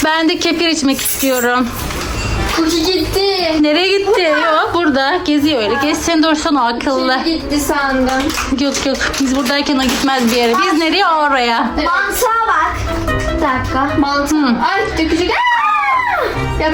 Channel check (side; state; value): both; identical; correlation 1.00